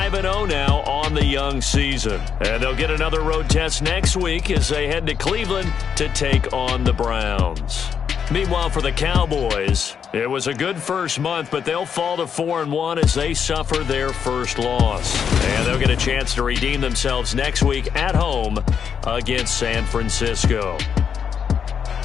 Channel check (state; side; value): quieter; right; 7.4 dB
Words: now on the young season. And they'll get another road test next week as they head to Cleveland to take on the Browns. Meanwhile, for the Cowboys, it was a good first month, but they'll fall to 4-1 as they suffer their first loss. And they'll get a chance to redeem themselves next week at home against San Francisco.